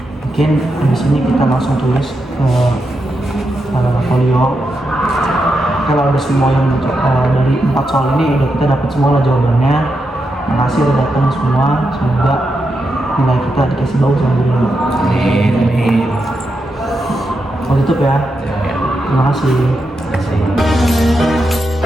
Mungkin habis ini kita langsung tulis ke folio. Kalau ada semua yang dari 4 soal ini udah kita dapat semua lah jawabannya. Makasih udah datang semua. Semoga nilai kita dikasih bagus sama guru. Amin. Mau tutup ya. Terima kasih. Terima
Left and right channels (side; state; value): both; normal; correlation 0.86